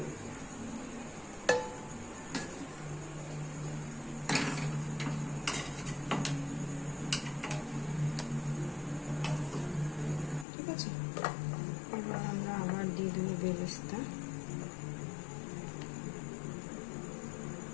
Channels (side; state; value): right; drops out; at 10.5 s